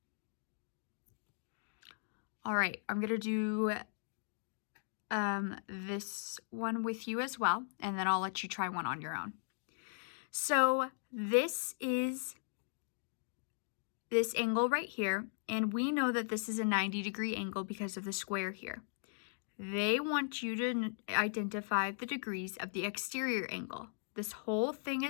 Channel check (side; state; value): right; silent; digital silence